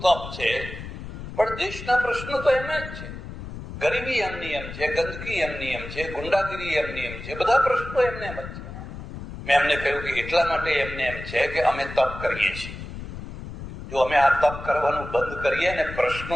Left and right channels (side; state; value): left; noise; rumble, 10 dB below the sound